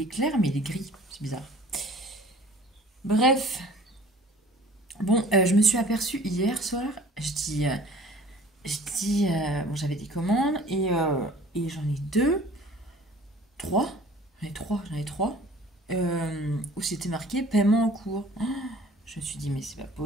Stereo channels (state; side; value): normal; both; correlation 0.49